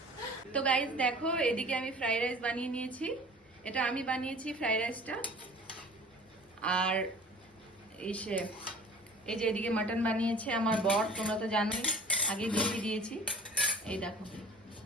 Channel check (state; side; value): normal; both; correlation 0.45